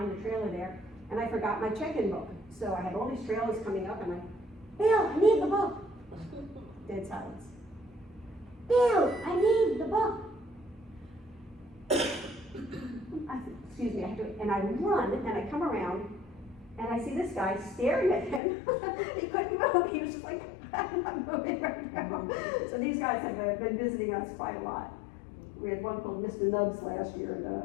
the trailer there, and I forgot my check-in book. So I had all these trailers coming up, and Bill, I need the book. Dead silence. Bill, I need the book. excuse me, I have to, and I run, and I come around, and I see this guy staring at him. He couldn't move, he was just like, I'm not moving right now. So these guys have been visiting us quite a lot. We had one called Mr. Nubs last year,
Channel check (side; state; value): right; drops out; at 18.4 s